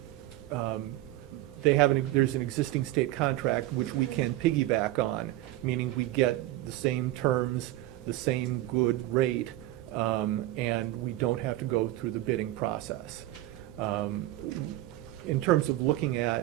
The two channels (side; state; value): left; quieter; 16.0 dB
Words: there's an existing state contract which we can piggyback on, meaning we get the same terms, the same good rate, and we don't have to go through the bidding process. In terms of looking